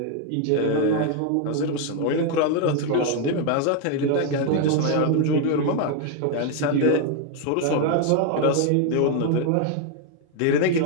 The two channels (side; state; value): both; different; correlation 0.01